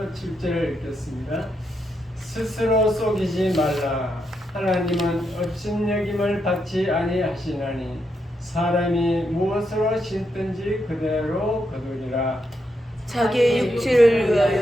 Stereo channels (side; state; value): both; normal; correlation 0.82